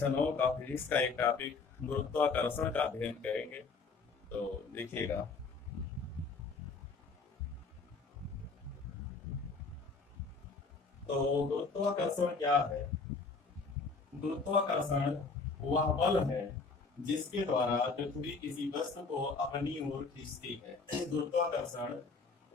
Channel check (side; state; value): right; quieter; 4.4 dB